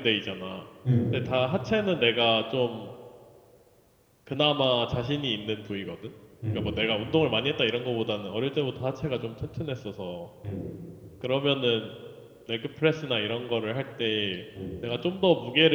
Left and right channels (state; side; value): identical; both; correlation 1.00